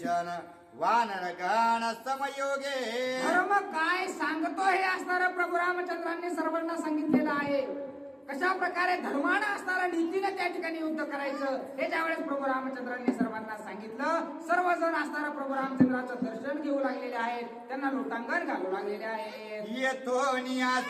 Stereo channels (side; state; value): both; identical; correlation 1.00